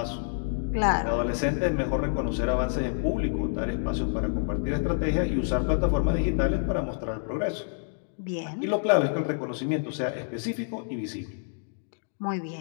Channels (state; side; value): silent; right; digital silence